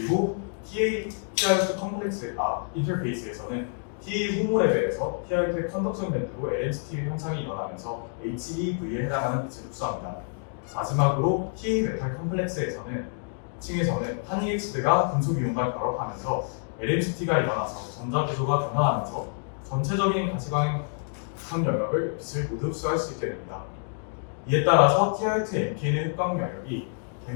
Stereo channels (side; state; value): right; silent; 60 dB below the other